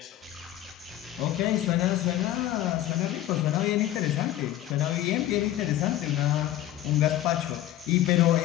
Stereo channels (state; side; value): quieter; right; 13.5 dB